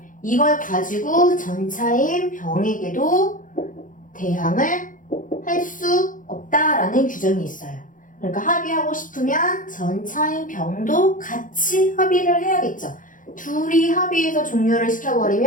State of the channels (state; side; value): late; right; 0.38 ms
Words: 이걸 가지고 전차인 병에게도 대항을 할 수 없다라는 규정이 있어요. 그러니까 합의하고 싶으면 전차인 병도 같이 합의를 해야겠죠. 둘이 합의해서 종료를